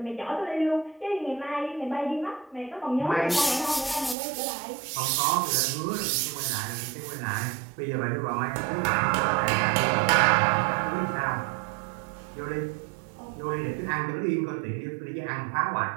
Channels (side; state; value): left; drops out; at 4.2 s